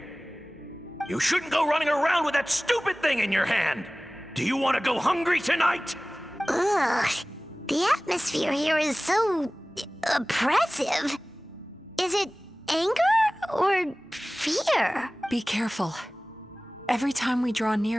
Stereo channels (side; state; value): both; normal; correlation 0.98